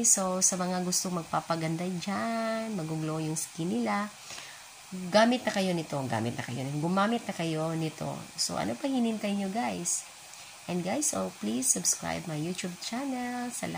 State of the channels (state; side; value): identical; both; correlation 1.00